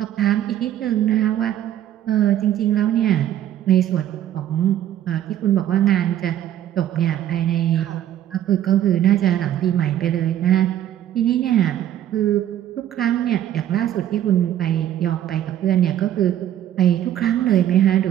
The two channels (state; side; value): quieter; left; 11.6 dB